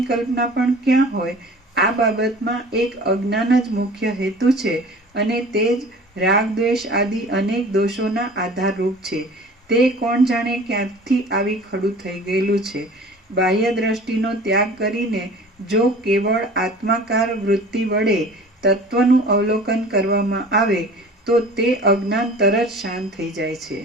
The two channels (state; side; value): normal; both; correlation 0.43